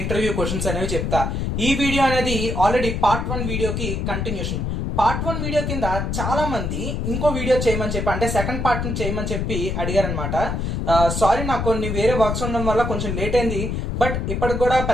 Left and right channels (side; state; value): left; noise; rumble, 1 dB below the sound